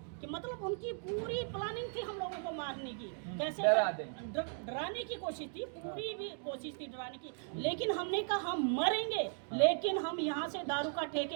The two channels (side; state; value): left; silent; 53 dB below the other